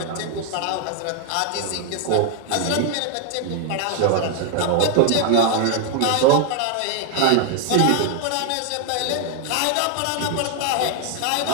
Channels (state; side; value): different; both; correlation 0.01